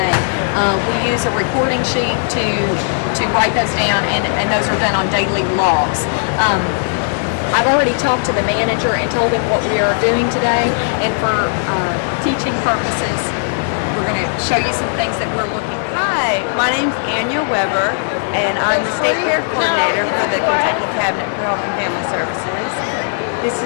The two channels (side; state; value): right; silent; digital silence